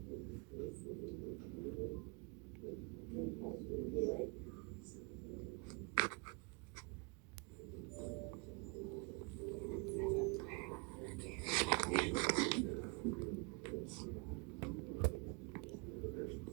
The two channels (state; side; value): quieter; left; 29.0 dB